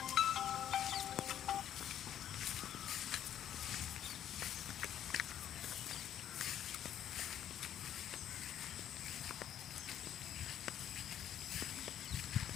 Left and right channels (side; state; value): right; quieter; 10.6 dB